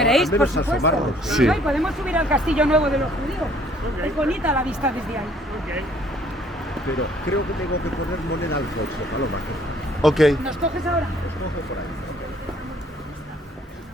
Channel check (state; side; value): normal; both; correlation 0.60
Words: al por menos supuesto. asomarnos. Sí. Ay, podemos subir al castillo nuevo de los judíos. Ok. Es bonita la vista desde ahí. Ok. Pero creo que tengo que poner moneda al coche, Paloma. Ok. ¿Nos coges ahora? Coge por ahí.